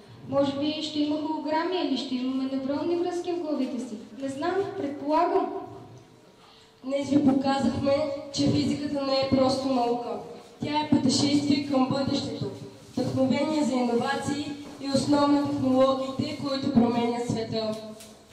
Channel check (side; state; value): both; identical; correlation 1.00